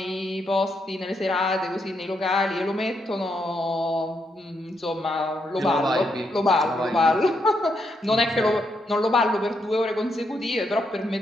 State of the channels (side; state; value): both; normal; correlation 0.79